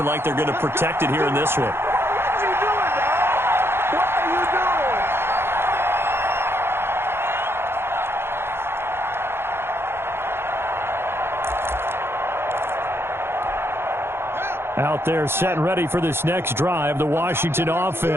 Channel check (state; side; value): late; left; 0.11 ms